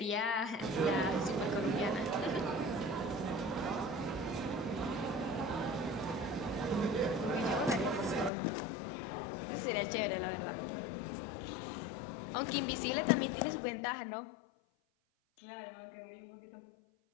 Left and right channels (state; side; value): drops out; right; at 8.3 s